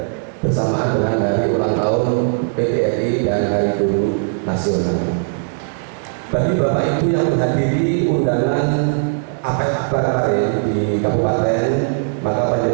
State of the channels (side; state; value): left; silent; digital silence